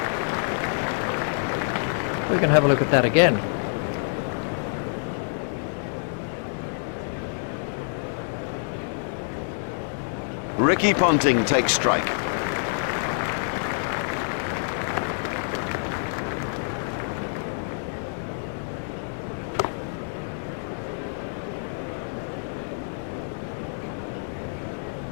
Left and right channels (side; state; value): right; silent; digital silence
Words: We can have a look at that again. Ricky Ponting takes strike.